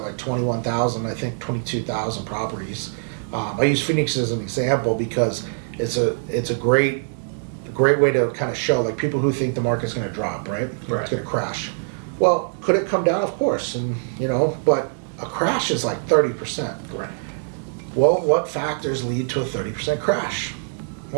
like 21,000, I think 22,000 properties. I use Phoenix as an example because it's a great way to kind of show, like, people who think the market's going to drop, right? Right. It's going to crash. Well, could it come down? Of course, and but a crash is like 30%. Right. Well, what factors lead to a 30% crash?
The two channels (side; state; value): left; silent; 63 dB below the other